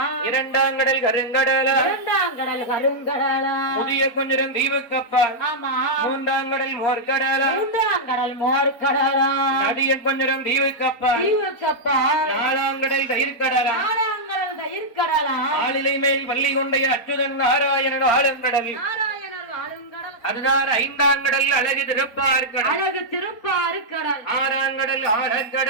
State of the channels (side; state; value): right; late; 4.4 ms